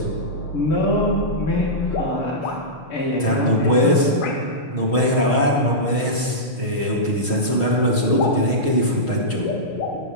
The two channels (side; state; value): right; late; 6.3 ms